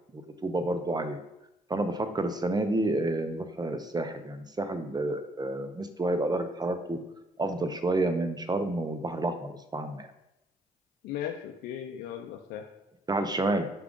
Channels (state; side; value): normal; both; correlation 0.68